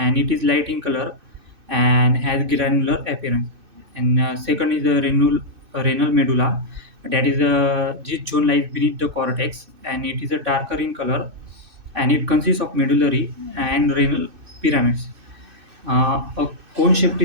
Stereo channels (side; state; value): left; late; 2.6 ms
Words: it is light in color and has granular appearance. And second is the renal medulla, that is this zone lies beneath the cortex, and it is a darker in color, and it consists of medullary and renal pyramids. A cone-shaped